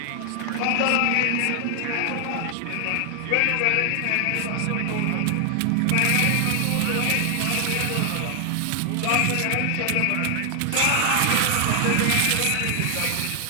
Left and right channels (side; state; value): both; different; correlation 0.00